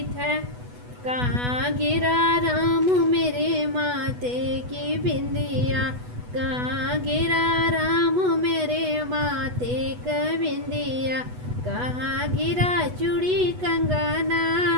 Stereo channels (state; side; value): late; left; 8.1 ms